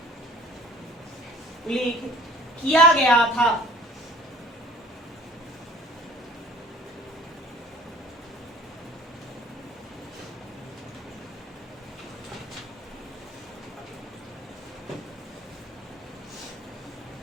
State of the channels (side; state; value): both; normal; correlation 0.49